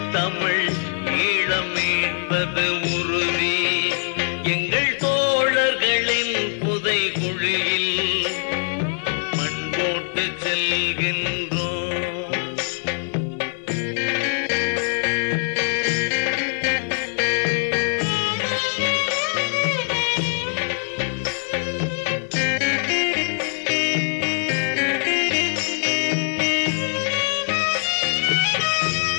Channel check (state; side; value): silent; right; digital silence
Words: தமிழ் ஈழம் மீட்பது உறுதி. எங்கள் தோழர்களின் புதை குழியில் மண் போட்டு செல்கின்றோம்.